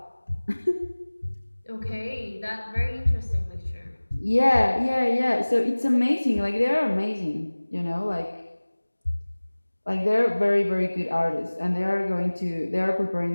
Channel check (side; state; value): both; inverted; correlation -1.00